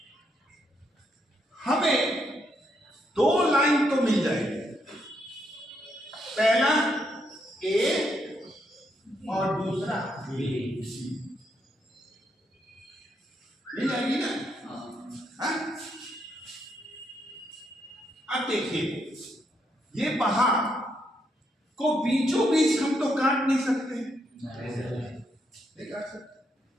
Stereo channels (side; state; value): both; normal; correlation 0.77